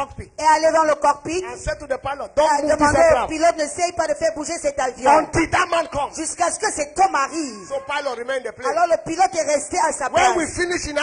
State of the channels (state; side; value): identical; both; correlation 1.00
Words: et allé dans le cockpit. and said to the pilot, Et don't a move this demandé au aircraft pilote n'essaye pas de faire bouger cet avion. until that man comes. Jusqu'à ce que cet homme arrive. So pilot remained in the plane. Alors le pilote est resté à sa When we place. finished in